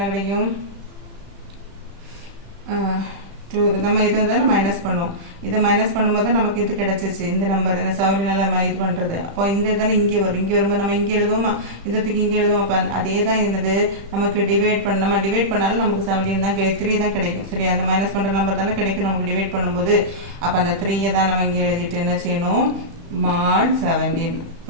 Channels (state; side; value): late; left; 35 ms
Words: கிடைக்கும்? நம்ம இதை வந்து மைனஸ் பண்ணுவோம். இதை மைனஸ் பண்ணும்போது நமக்கு இது கிடைச்சிச்சு. இந்த நம்பர் என்ன 17ஆல இது பண்ணுறது. அப்போ இந்த தானே இங்கே வரும். இங்கே வரும்போது நம்ம இங்கே எழுதுவோமா? இதுக்கு இங்கே எழுதுவோம். அப்போ அதே தான் என்னது? நமக்கு டிவைட் பண்ண நம்ம டிவைட் பண்ணாலும் நமக்கு 17 தான் 3 தான் கிடைக்கும். சரி? அந்த மைனஸ் பண்ணுற நம்பர் தானே கிடைக்கும் நமக்கு டிவைட் பண்ணும்போது. அப்போ அந்த 3 தான் நம்ம இங்கே எழுதிட்டு என்ன செய்யணும்? mod 17.